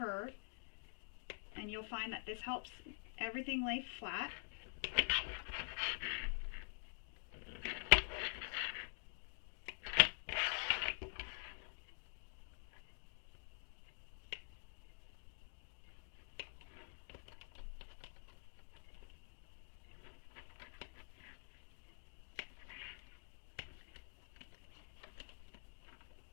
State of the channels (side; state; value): right; silent; digital silence